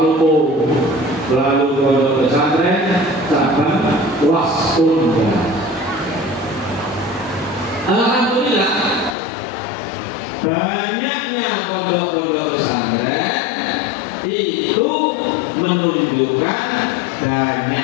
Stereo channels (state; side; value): drops out; right; at 9.2 s